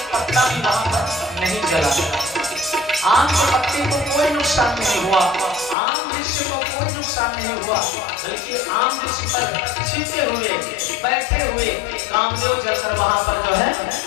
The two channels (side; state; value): right; drops out; at 5.8 s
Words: पत्ता भी वहां पर नहीं जला। आम के पत्ते को कोई नुकसान नहीं हुआ, आम वृक्ष को कोई नुकसान नहीं हुआ, बल्कि आम वृक्ष पर छिपे हुए बैठे हुए कामदेव जलकर वहां पर जो है